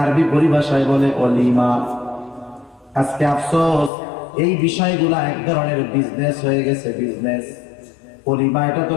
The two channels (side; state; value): right; drops out; at 3.9 s